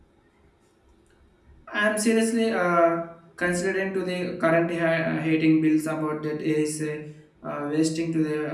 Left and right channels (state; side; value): identical; both; correlation 1.00